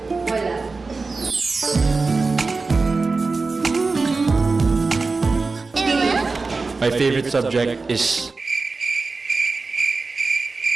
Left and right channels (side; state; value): left; quieter; 4.0 dB